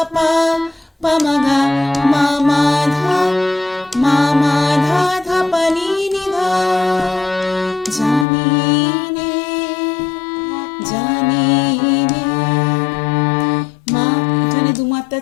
পা পা মা গা মা মা ধা ধা পা নি নি ধা, জানিনে জানিনে মা, এখানে 2 মাত্রা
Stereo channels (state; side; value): drops out; right; at 8.2 s